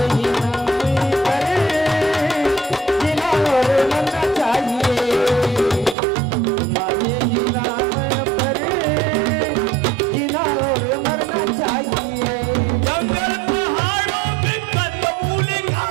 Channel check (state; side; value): drops out; left; at 6.0 s